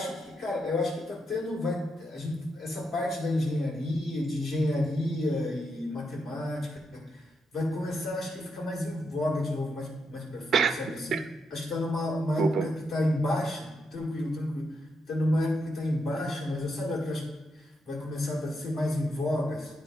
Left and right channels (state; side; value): normal; both; correlation 0.81